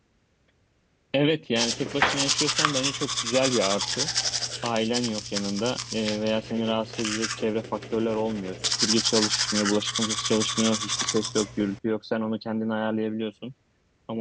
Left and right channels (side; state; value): both; identical; correlation 1.00